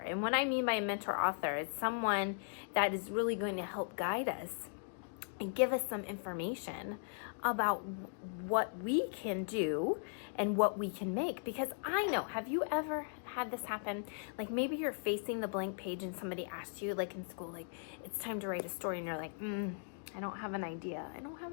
And what I mean by a mentor author is someone that is really going to help guide us and give us some information about what we can do and what we can make. Because I know, have you ever had this happen? Like maybe you're facing the blank page and somebody asks you, like in school, like it's time to write a story, and you're like, I don't have an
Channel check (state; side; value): silent; right; digital silence